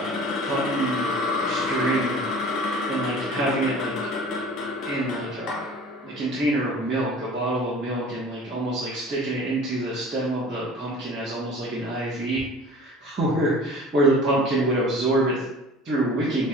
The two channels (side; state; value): both; normal; correlation 0.43